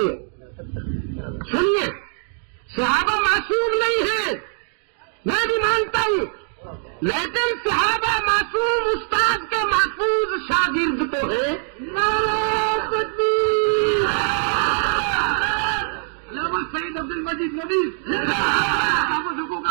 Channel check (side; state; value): left; silent; 55 dB below the other